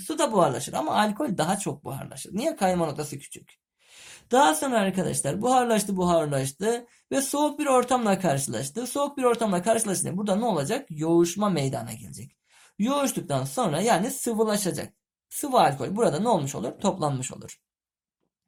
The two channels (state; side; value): identical; both; correlation 1.00